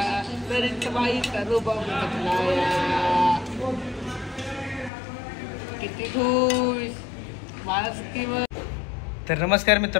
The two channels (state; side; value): drops out; right; at 4.9 s